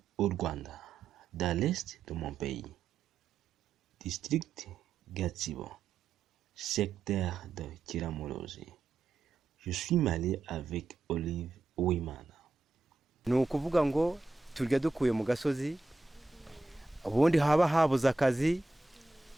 au Rwanda, dans l'est de mon pays. District Gatsibo, secteur de Kiramuruzi. Je suis marié avec Olive Uwimana. Ni ukuvuga ngo turya dukuye mu gasozi, ubundi haba habuze akazi,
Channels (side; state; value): left; quieter; 3.4 dB